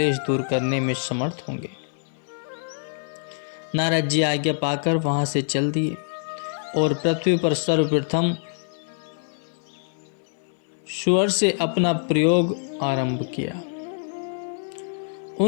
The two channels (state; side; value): silent; right; 58 dB below the other